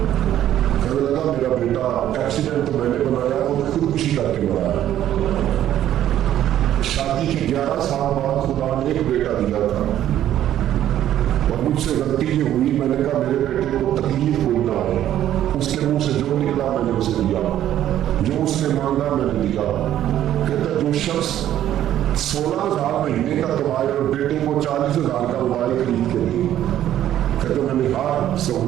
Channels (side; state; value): left; quieter; 11.8 dB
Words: کہنے لگا میرا بیٹا ایکسیڈنٹ تو میں نے بنایا, وہ خودکشی کر کے بنایا. شادی کے 11 سال بعد خدا نے ایک بیٹا دیا تھا, اور مجھ سے غلطی یہ ہوئی, میں نے کہا میرے بیٹے کو تکلیف کوئی نہ ہے. اس کے منہ سے جو نکلا میں نے اسے دیا, جو اس نے مانگا میں نے دیا. کہتا جو شخص 16,000 مہینے کا کمائے اور بیٹے کو 40,000 کا موبائل خرید کے دی, کہتا میں نے ہر